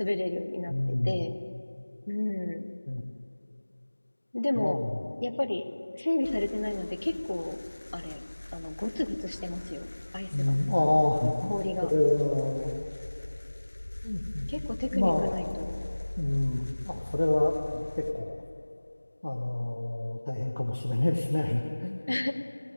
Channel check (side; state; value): both; inverted; correlation -1.00